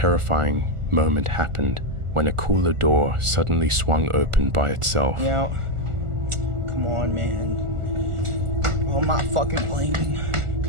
moment happened when a cooler door suddenly swung open by itself. yeah. Come on, man. Oh, I'm not fucking playing.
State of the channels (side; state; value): left; late; 1.4 ms